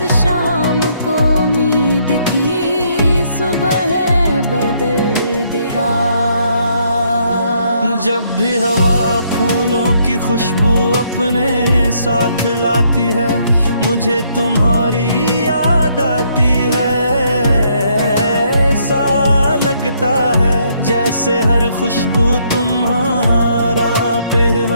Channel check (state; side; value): inverted; both; correlation -0.70